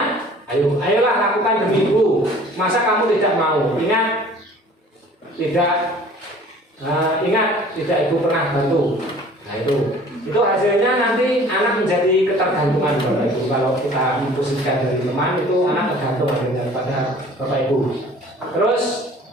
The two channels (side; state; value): both; normal; correlation 0.49